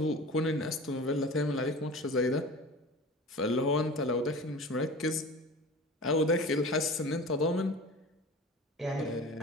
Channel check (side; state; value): both; normal; correlation 0.37